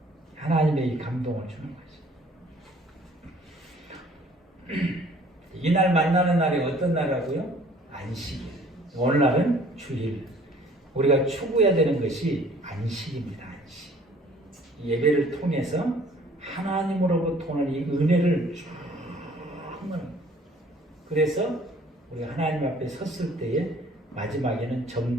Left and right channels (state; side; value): normal; both; correlation 0.55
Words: 하나님의 이 감동을 주는 거죠. 이날 만나는 날이 어떤 날이라고요? 안식일. 오늘날은 주일. 우리가 추구해야 되는 것이 안식입니다. 안식. 예배를 통해서 하나님으로부터 오는 이 은혜를 그래서 우리가 하나님 앞에 섰을 때에 마지막에는